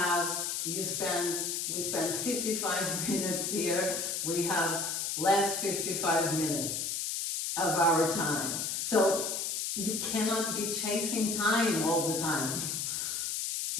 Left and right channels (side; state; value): left; noise; hiss, 1 dB below the sound